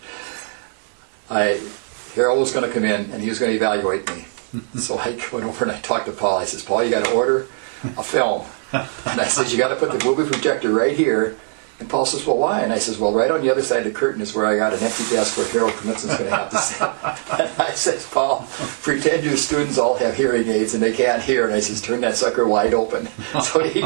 Harold was going to come in and he was going to evaluate me. So I went over and I talked to Paul. I says, Paul, you got to order a film. And I says, you got to put the movie projector right here. And Paul says, well, why? And I says, well, right on the other side of the curtain is where I got an empty desk where Harold Knudsen's going to have to sit. And I says, Paul, pretend your students all have hearing aids and they can't hear. And I says, turn that sucker wide open. So he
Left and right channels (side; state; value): left; silent; digital silence